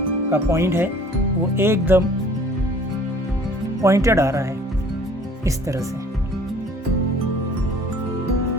का पॉइंट है वो एकदम पॉइंटेड आ रहा है, इस तरह से।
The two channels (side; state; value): both; normal; correlation 0.52